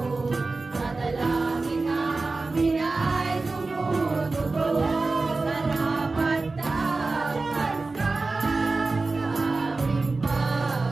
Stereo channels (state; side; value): quieter; left; 3.6 dB